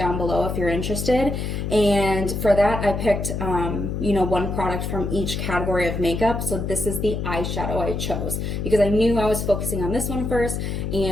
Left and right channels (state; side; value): noise; left; hum, 3 dB below the sound